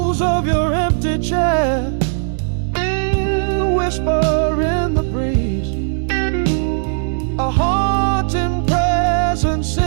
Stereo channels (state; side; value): silent; left; digital silence